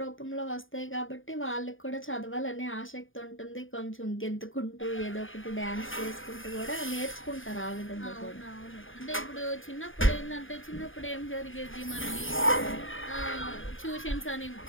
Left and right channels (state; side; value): late; right; 0.58 ms